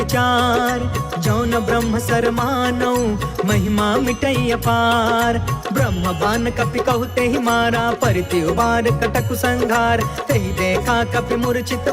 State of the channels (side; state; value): both; identical; correlation 1.00